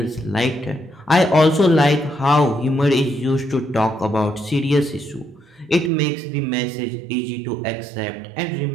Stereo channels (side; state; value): left; drops out; at 5.9 s